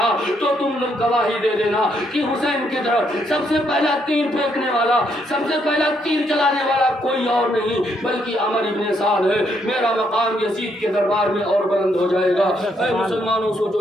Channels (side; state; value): both; normal; correlation 0.74